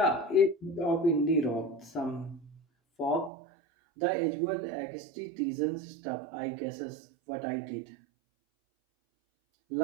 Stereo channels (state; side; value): drops out; left; at 3.3 s